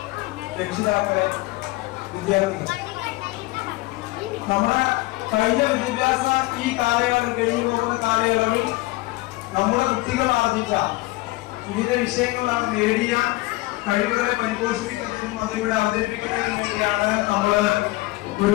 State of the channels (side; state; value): right; quieter; 20.4 dB